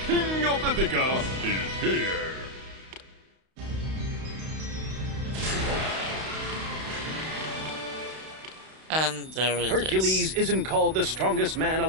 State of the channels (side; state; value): left; late; 32 ms